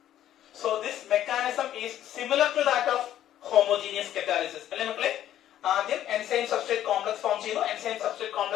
So this mechanism is similar to that of homogeneous catalysis. അല്ലേ മക്കളെ? ആദ്യം enzyme substrate complex form ചെയ്യുന്നു, enzyme substrate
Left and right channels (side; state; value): right; quieter; 11.8 dB